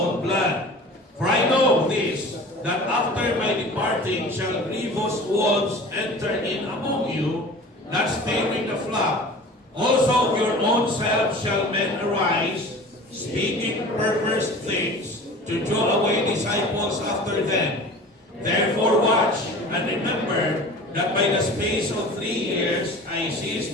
blood. For I know this, that after my departing shall grievous wolves enter in among you, not sparing the flock. Also of your own selves shall men arise, speaking perverse things, to draw away disciples after them. Therefore watch and remember that by the space of 3 years I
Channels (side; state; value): both; normal; correlation 0.40